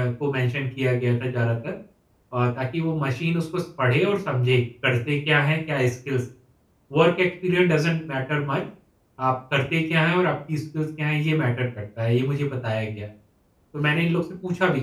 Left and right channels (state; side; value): identical; both; correlation 1.00